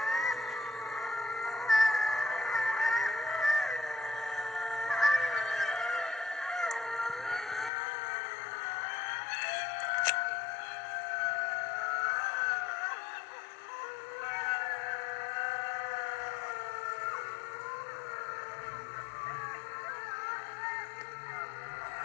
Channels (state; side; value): drops out; right; at 7.7 s